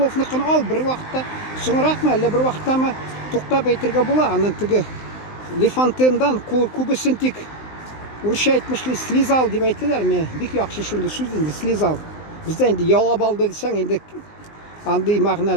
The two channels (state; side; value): late; right; 19 ms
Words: ал бер вакытта, соңракмы, әллә бер вакыттамы туктап әйтергә була. Аның теге Лефантендан күбесен тик урысча әйтмешли слизал дип әйтәләр. Мен бик яхшы шундый сүз инде слизал. Бездә инде ялап алды дисәң, инде андый